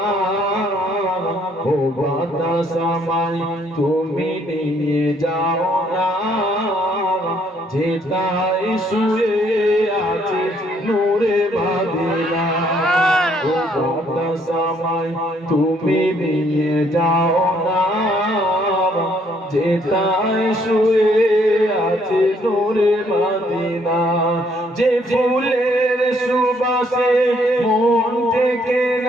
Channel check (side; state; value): both; normal; correlation 0.67